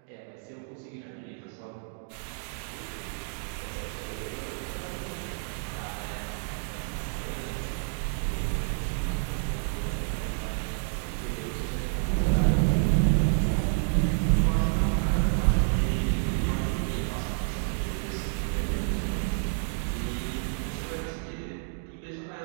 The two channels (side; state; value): left; silent; 58 dB below the other